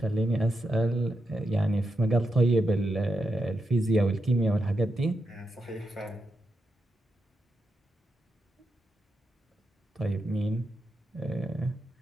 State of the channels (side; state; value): both; normal; correlation 0.85